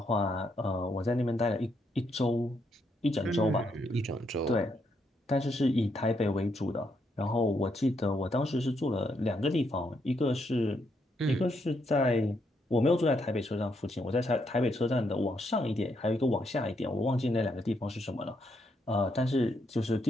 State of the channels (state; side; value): normal; both; correlation 0.77